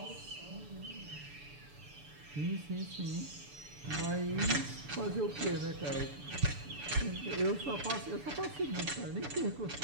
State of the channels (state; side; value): late; left; 6.9 ms